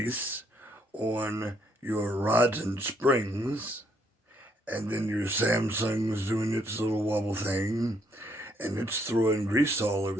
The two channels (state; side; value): normal; both; correlation 0.71